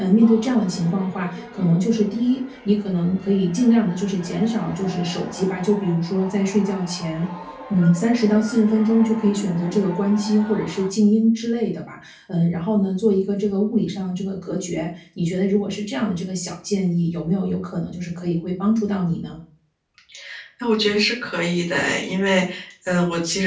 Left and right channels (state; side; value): identical; both; correlation 1.00